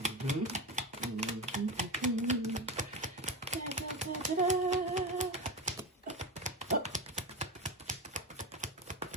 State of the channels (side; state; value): both; normal; correlation 0.22